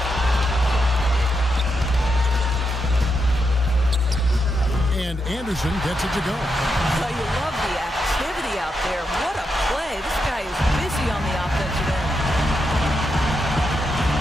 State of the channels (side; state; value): both; normal; correlation 0.84